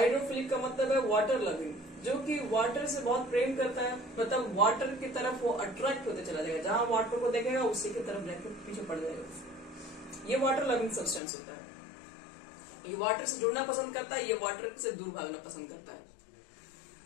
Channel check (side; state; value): right; drops out; at 11.2 s